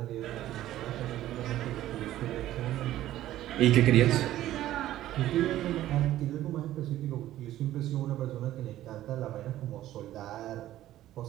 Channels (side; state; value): left; quieter; 13.8 dB